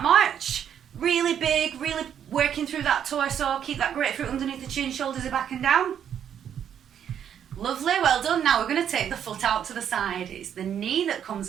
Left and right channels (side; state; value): left; quieter; 9.0 dB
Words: march. Really big, really working through that torso. Keep that grapefruit underneath the chin, shoulders are back and down. Lovely, well done. Now we're going to take the foot out to the side. It's the knee that